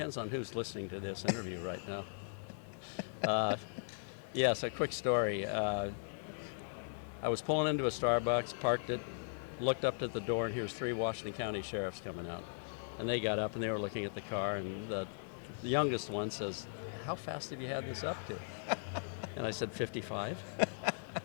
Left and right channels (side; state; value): right; silent; digital silence